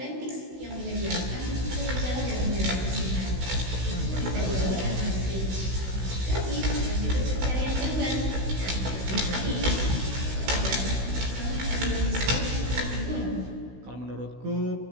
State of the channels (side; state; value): left; late; 16 ms